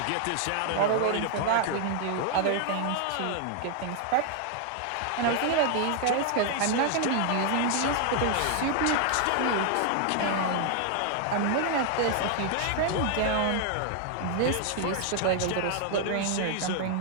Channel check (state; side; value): different; both; correlation 0.00